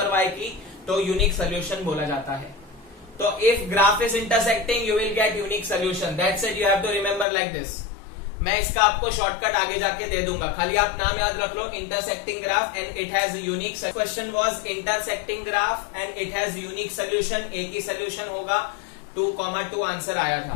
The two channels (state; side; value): drops out; right; at 7.2 s